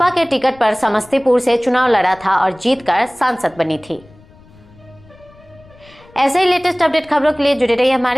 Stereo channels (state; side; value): noise; left; rumble, 26 dB below the sound